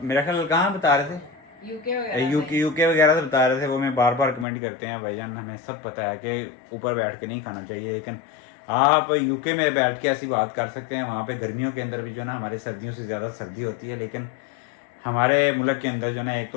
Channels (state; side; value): drops out; right; at 4.5 s